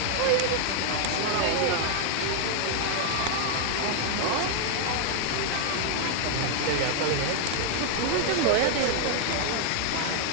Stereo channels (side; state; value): both; different; correlation 0.00